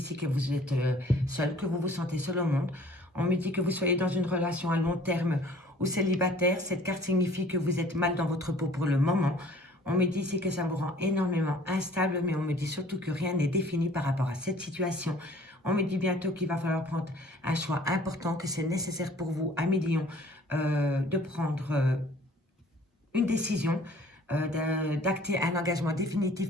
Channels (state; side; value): normal; both; correlation 0.53